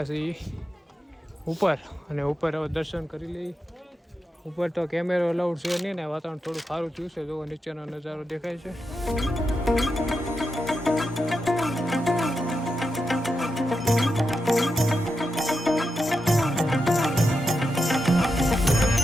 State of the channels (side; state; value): both; normal; correlation 0.87